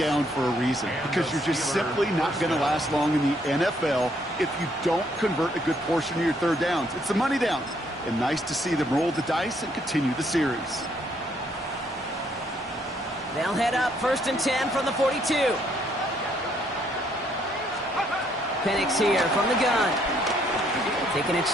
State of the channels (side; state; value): both; normal; correlation 0.69